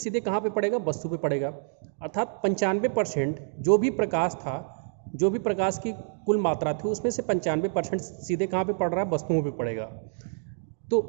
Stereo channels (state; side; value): silent; left; digital silence